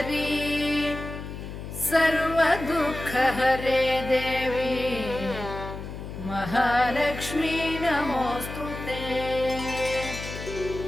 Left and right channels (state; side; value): noise; left; hum, 9 dB below the sound